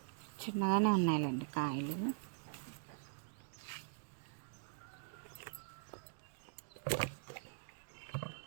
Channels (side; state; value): left; silent; digital silence